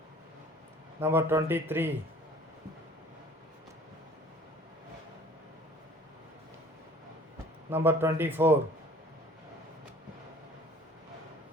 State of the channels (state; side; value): normal; both; correlation 0.50